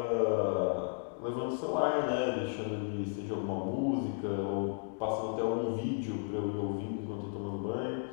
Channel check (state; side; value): silent; right; digital silence